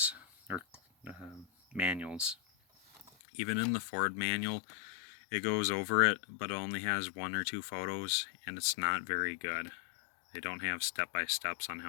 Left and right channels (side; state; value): right; drops out; at 3.1 s